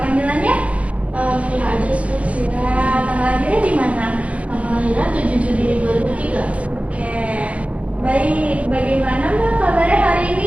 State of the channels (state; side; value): late; left; 0.064 ms